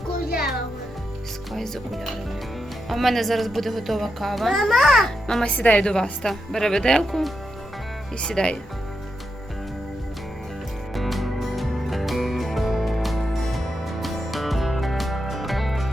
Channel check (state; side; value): normal; both; correlation 0.86